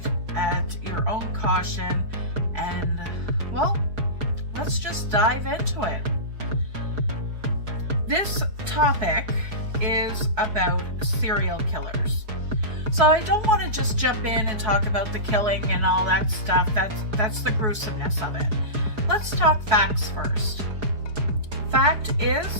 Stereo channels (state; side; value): late; left; 4.8 ms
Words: at your own caution, and, well, let's just dive into it. This topic is about serial killers. So I don't want to just jump in and talk about the killing and all that stuff. That's the gruesomeness of it. Let's talk facts first. Fact is,